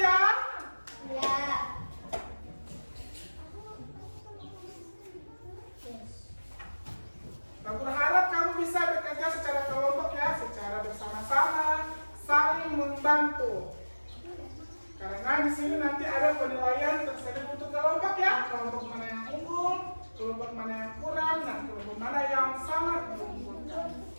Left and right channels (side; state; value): both; inverted; correlation -1.00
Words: ya. Ya. Aku berharap kamu bisa bekerja secara kelompok ya, secara bersama-sama, saling membantu. Karena di sini nanti ada penilaian tersebut untuk kelompok ya, kelompok mana yang unggul, kelompok mana yang kurang, dan kelompok mana yang sangat menguntungkan.